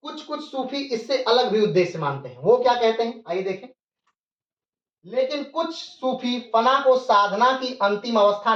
कुछ कुछ सूफी इससे अलग भी उद्देश्य मानते हैं। वो क्या कहते हैं, आइए देखें। लेकिन कुछ सूफी फना को साधना की अंतिम अवस्था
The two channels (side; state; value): both; identical; correlation 1.00